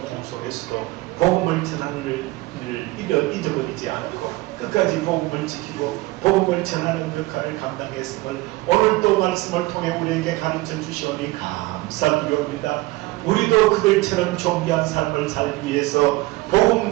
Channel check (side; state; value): left; quieter; 20.6 dB